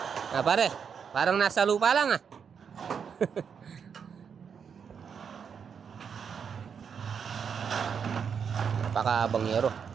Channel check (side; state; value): left; quieter; 6.8 dB